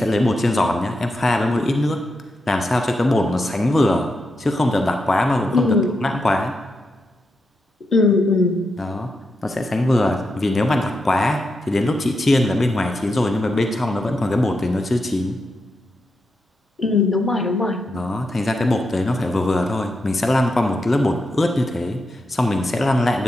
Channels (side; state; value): both; normal; correlation 0.85